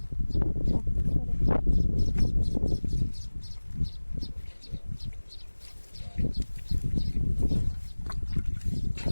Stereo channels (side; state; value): both; inverted; correlation -1.00